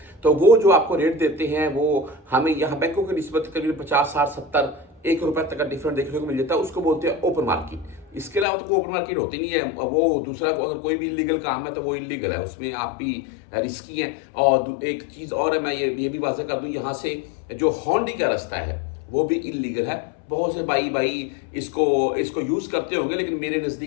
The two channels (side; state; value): right; drops out; at 8.5 s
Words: तो वो जो आपको रेट देते हैं वो हमें यहाँ बैंकों की निस्बत करीब 50, 60, 70, ₹1 तक का डिफरेंट देखने को मिल जाता है। उसको बोलते हैं ओपन मार्केट। इसके अलावा तो कोई ओपन मार्केट होती नहीं है। वो दूसरा अगर कोई भी इलीगल काम है तो वो इलीगल है, उसमें आप भी रिस्की हैं। और एक चीज़ और है, मैं ये भी वाज़ह कर दूं, यहाँ से जो होंडी का रास्ता है वो भी इलीगल है। बहुत से भाई इसको यूज़ करते होंगे, लेकिन मेरे